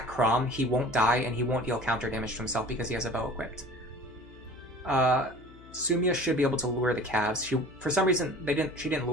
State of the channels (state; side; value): noise; left; hum, 21 dB below the sound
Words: Chrom, he won't die, and he won't deal counter damage to himself because he has a bow equipped. Sumia should be able to lure the calves. For some reason, she didn't